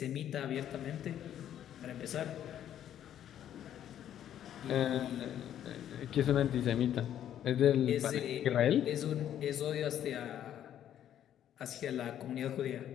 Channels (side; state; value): right; quieter; 10.7 dB